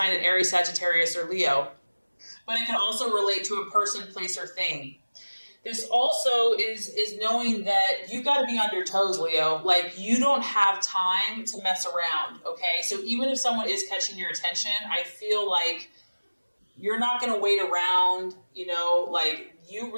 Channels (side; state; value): both; inverted; correlation -1.00